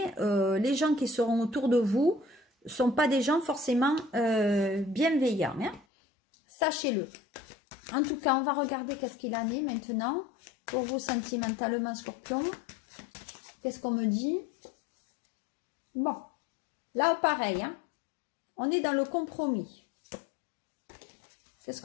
les gens qui seront autour de vous ne sont pas des gens forcément bienveillants. Hein. Sachez-le. En tout cas, on va regarder qu'est-ce qu'il en est maintenant pour vous sentimentalement, scorpion. Qu'est-ce qu'on me dit? Bon. Là, pareil, hein, on est dans le compromis. Qu'est-ce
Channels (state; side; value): drops out; right; at 5.9 s